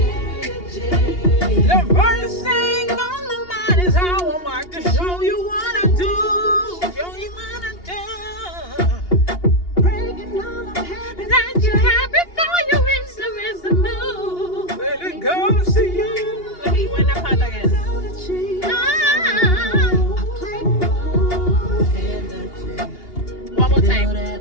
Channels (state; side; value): late; right; 2.8 ms